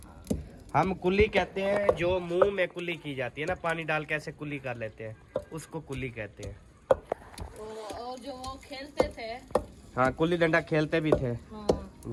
हम कुल्ली कहते हैं जो मुंह में कुल्ली की जाती है ना, पानी डाल के ऐसे कुल्ली कर लेते हैं, उसको कुल्ली कहते हैं। और जो वो खेलते थे, हाँ कुल्ली डंडा खेलते भी थे। हाँ,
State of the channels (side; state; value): both; identical; correlation 1.00